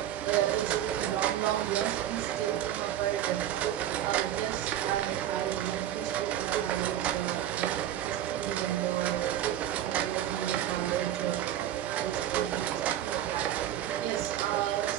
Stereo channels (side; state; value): left; quieter; 11.7 dB